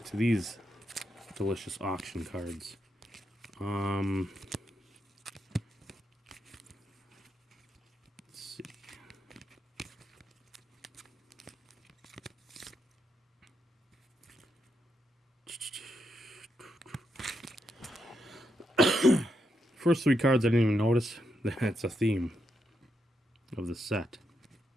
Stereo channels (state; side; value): normal; both; correlation 0.82